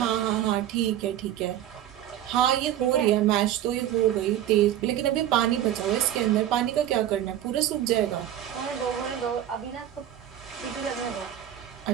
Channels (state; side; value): quieter; left; 11.5 dB